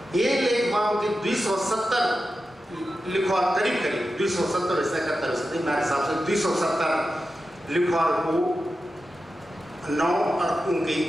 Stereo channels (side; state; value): both; normal; correlation 0.91